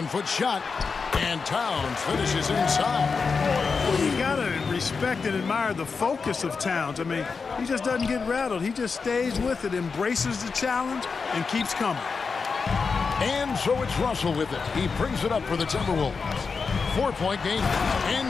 shot, and Towns finishes inside. Well, you got to respect and admire the focus of Towns. I mean, he just doesn't get rattled. He just stays with it, embraces the challenge, and keeps coming. And so it's Russell with it. He brings it up for the Timberwolves. 4-point game,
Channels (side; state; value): right; quieter; 5.0 dB